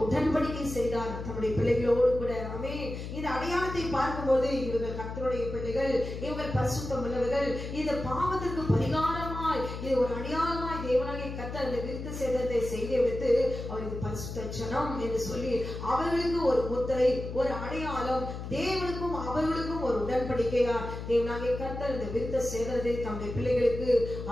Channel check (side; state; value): left; noise; hum, 7 dB below the sound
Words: உடன்படிக்கை செய்தார் தம்முடைய பிள்ளைகளோடு கூட. ஆமென். இந்த அடையாளத்தை பார்க்கும்போது இவர்கள் கர்த்தருடைய பிள்ளைகள், இவர்கள் பரிசுத்தம் உள்ளவர்கள், இந்த பாவத்திற்கு பரிகாரமாய் இது ஒரு அடையாளமாய் தேவனாகிய கர்த்தர் இந்த விருத்த சேதனத்தை செய்து வைத்து அவர் இது பரிசுத்த ஜனம் என்று சொல்லி அவர்களுக்கு ஒரு முத்திரை, ஒரு அடையாளம், தேவனுக்கும் அவர்களுக்கும் ஒரு உடன்படிக்கையா தேவனாகிய கர்த்தர் இந்த விருத்த சேதனத்தை தம்முடைய பிள்ளைகளுக்கு